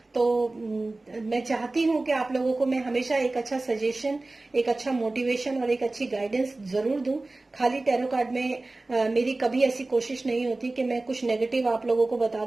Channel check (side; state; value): left; quieter; 3.1 dB